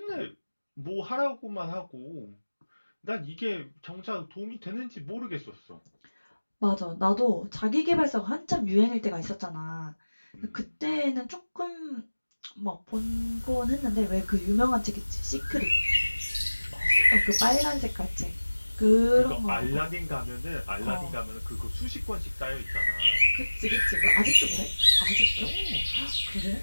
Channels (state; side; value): inverted; both; correlation -1.00